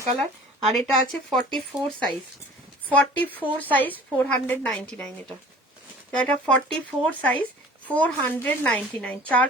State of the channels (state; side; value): normal; both; correlation 0.46